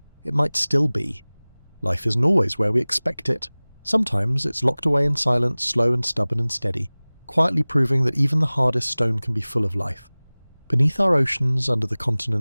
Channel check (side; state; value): both; inverted; correlation -1.00